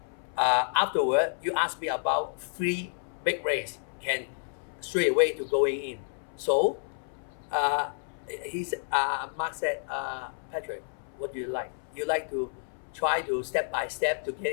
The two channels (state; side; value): silent; right; 58 dB below the other